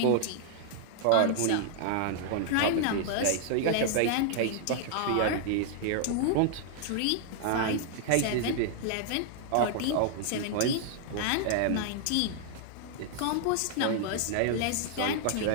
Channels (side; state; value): both; different; correlation 0.00